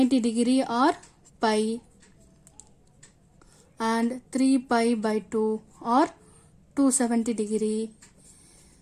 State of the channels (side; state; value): both; identical; correlation 1.00